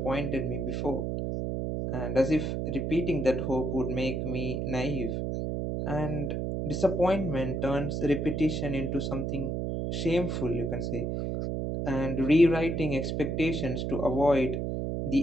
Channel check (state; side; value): noise; right; hum, 1 dB below the sound